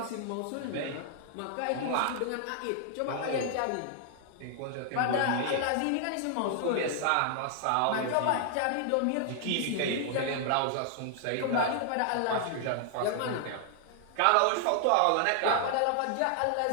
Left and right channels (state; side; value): different; both; correlation 0.00